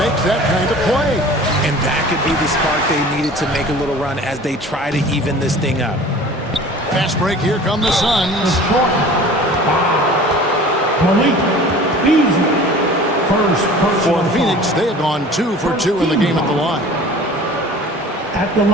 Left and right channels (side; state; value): both; normal; correlation 0.44